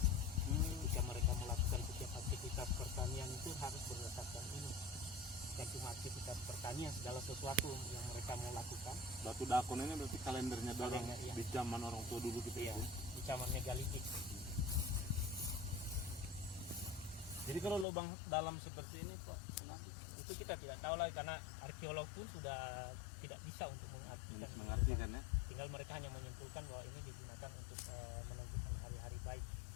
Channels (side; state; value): right; drops out; at 17.9 s